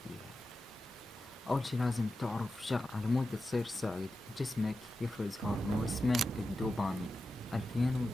بيها. اول شي لازم تعرف شغل، على مود تصير سعيد جسمك يفرز هرمون اسمه الدوبامين.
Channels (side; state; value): both; normal; correlation 0.91